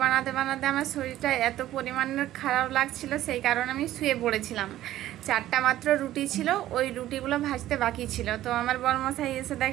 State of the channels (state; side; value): quieter; left; 13.9 dB